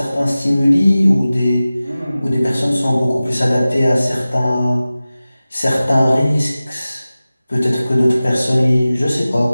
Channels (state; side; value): inverted; both; correlation -0.97